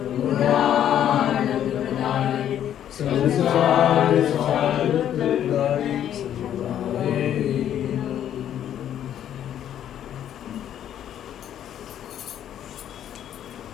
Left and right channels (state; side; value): quieter; right; 10.5 dB